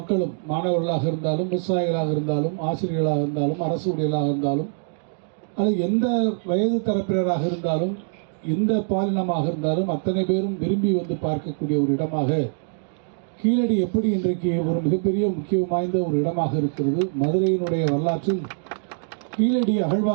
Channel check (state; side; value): silent; left; digital silence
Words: மாணவர்களாக இருந்தாலும், விவசாயிகளாக இருந்தாலும், ஆசிரியர்களாக இருந்தாலும், அரசு ஊழியர்களாக இருந்தாலும், அல்லது எந்த வயது தரப்பினராக இருந்தாலும், எந்த பாலினமாக இருந்தாலும் அத்தனை பேரும் விரும்பி வந்து பார்க்கக்கூடிய ஒரு இடமாக கீழடி எப்படி இன்றைக்கு ஒரு மிகப்பெரிய முக்கியம் வாய்ந்த ஒரு இடமாக இருக்கிறது. மதுரையினுடைய வரலாற்றில் கீழடி